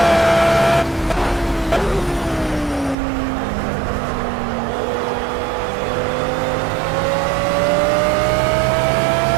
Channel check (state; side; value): drops out; left; at 3.0 s